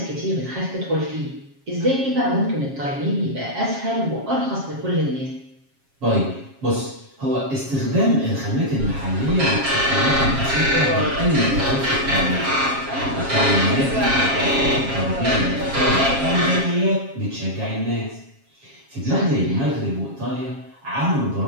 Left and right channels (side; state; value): left; late; 7.4 ms